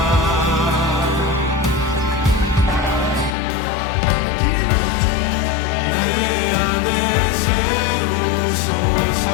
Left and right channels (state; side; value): drops out; right; at 3.3 s